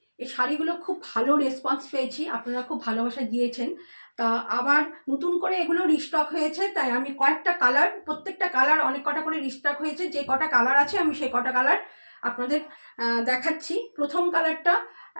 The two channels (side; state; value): both; inverted; correlation -1.00